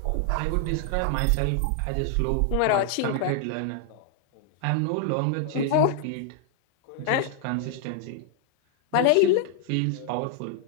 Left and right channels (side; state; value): both; different; correlation 0.00